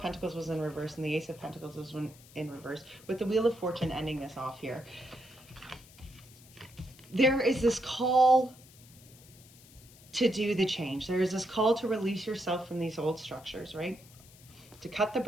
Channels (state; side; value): noise; left; hiss, 23 dB below the sound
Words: Pentacles was in reverse and the Ace of Pentacles was in reverse, with the Wheel of Fortune ending this off here. There is this call to do the change. There is this call to release yourself from these old structures, right? To cut the